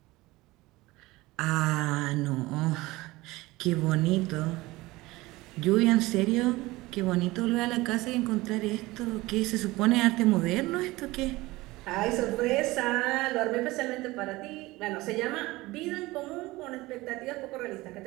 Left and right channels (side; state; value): left; quieter; 20.1 dB